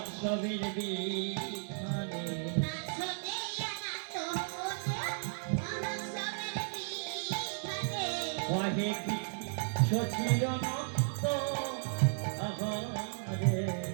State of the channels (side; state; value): left; silent; 55 dB below the other